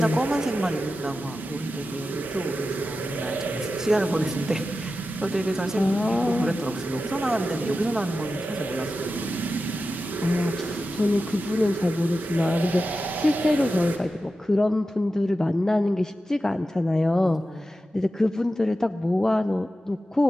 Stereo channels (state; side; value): normal; both; correlation 0.92